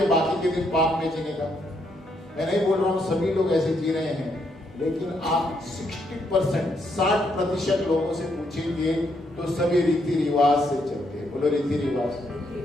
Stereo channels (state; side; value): normal; both; correlation 0.75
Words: बाकी के दिन पाप में जीने का? मैं नहीं बोल रहा हूं सभी लोग ऐसे जी रहे हैं, लेकिन आप 60% लोगों से पूछेंगे तो सभी रीति रिवाज से चलते हैं। बोलो रीति रिवाज।